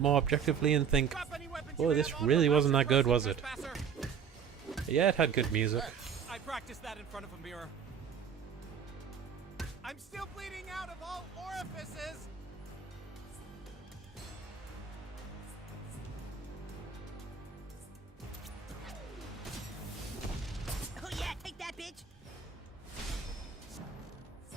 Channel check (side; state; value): left; quieter; 7.1 dB